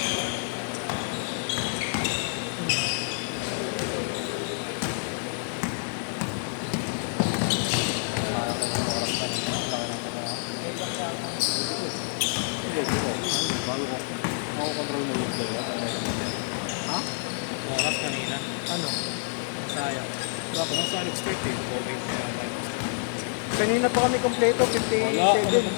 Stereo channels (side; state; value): right; silent; digital silence